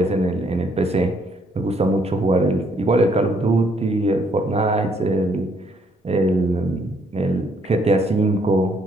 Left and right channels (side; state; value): both; normal; correlation 0.69